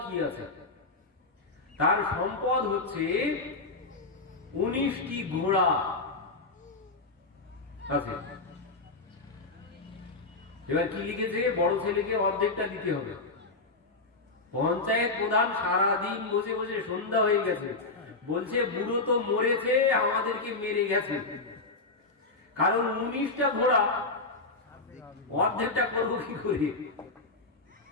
কি আছে। তার সম্পদ হচ্ছে 19টি ঘোড়া আছে। এবার কি লিখেছে, বড় ছেলেকে অর্ধেকটা দিতে হবে। পঞ্চায়েত প্রধান সারাদিন বসে বসে সন্ধ্যা হয়ে গেছে, বলছে বুড়ো তো মরেছে, আমাদেরকে মেরে গেছে, কারণ 19টা ঘোড়া অর্ধেকটা করবো কি করে।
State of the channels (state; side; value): quieter; right; 3.4 dB